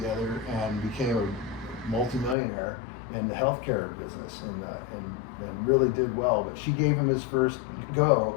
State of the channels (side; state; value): right; drops out; at 2.4 s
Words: and became a multimillionaire in the healthcare business, and really did well. But she gave him his first go,